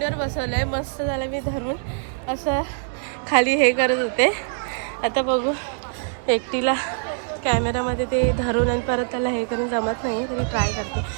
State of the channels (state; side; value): silent; left; digital silence